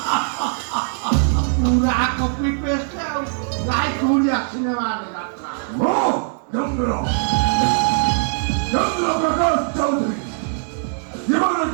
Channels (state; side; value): silent; left; 65 dB below the other